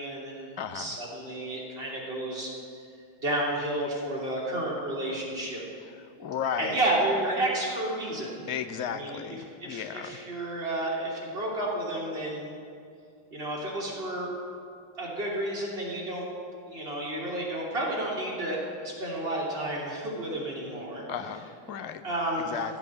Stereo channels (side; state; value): left; late; 2.9 ms